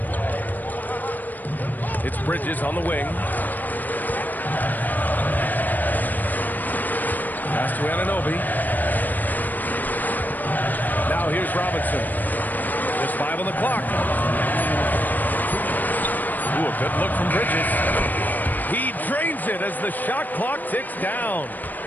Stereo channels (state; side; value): late; right; 0.086 ms